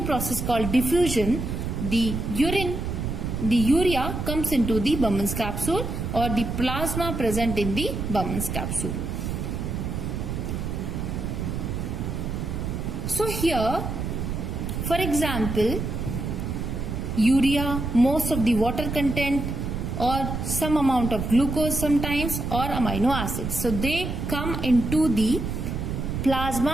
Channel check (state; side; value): noise; right; rumble, 3 dB below the sound